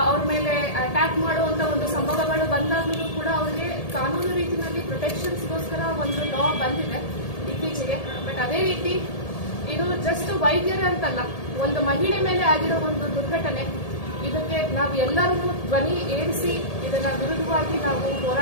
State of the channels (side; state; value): right; late; 1.8 ms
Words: ಅವ್ರ ಮೇಲೆ ಅಟ್ಯಾಕ್ ಮಾಡುವಂತ ಒಂದು ಸಂಭವಗಳು ಬಂದಾಗಲೂ ಕೂಡ ಅವ್ರಿಗೆ ಕಾನೂನು ರೀತಿಯಲ್ಲಿ ಪ್ರೊಟೆಕ್ಷನ್ಸ್ಗೋಸ್ಕರ ಒಂದು ಲಾ ಬಂದಿದೆ ಇತ್ತೀಚೆಗೆ. ಬಟ್ ಅದೇ ರೀತಿ ಇದು ಜಸ್ಟ್ ವೈದ್ಯರೇ ಅಂತಲ್ಲ, ಒಂದು ಮಹಿಳೆ ಮೇಲೆ ಆಗಿರೋ ಒಂದು ದುರ್ಘಟನೆ. ಇದಕ್ಕೆ ನಾವು ಎಲ್ಲರೂ ಧ್ವನಿ ಏರಿಸಿ ಇದನ್ನ ವಿರುದ್ಧವಾಗಿ ನಾವು